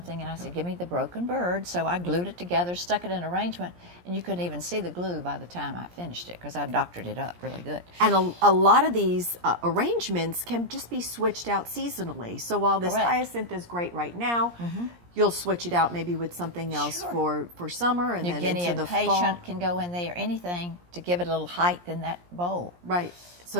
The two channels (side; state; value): left; late; 17 ms